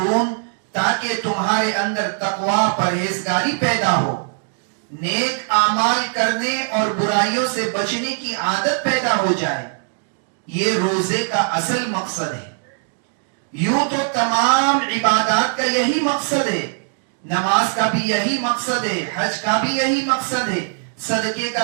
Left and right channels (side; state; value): left; silent; digital silence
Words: تاکہ تمہارے اندر تقوی پرہیزگاری پیدا ہو، نیک اعمال کرنے اور برائیوں سے بچنے کی عادت پیدا ہو جائے. یہ روزے کا اصل مقصد ہے. یوں تو تمام عبادات کا یہی مقصد ہے، نماز کا بھی یہی مقصد ہے، حج کا بھی یہی مقصد ہے، صدقے